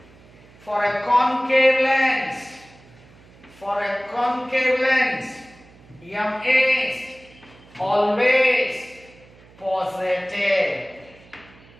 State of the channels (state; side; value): noise; right; hum, 25 dB below the sound